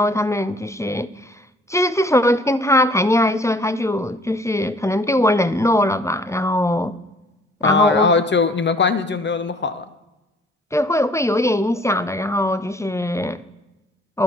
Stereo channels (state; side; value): normal; both; correlation 0.56